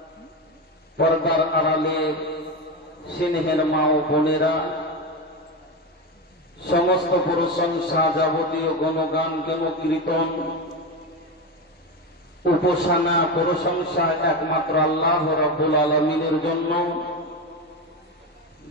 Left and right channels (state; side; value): normal; both; correlation 0.17